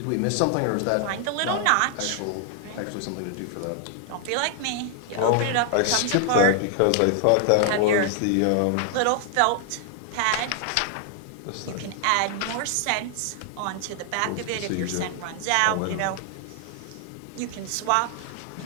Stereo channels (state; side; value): different; both; correlation 0.00